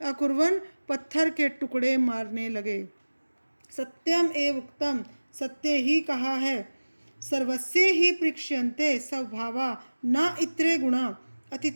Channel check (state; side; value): inverted; both; correlation -1.00